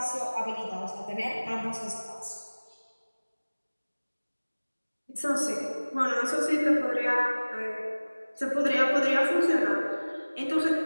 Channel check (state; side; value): inverted; both; correlation -1.00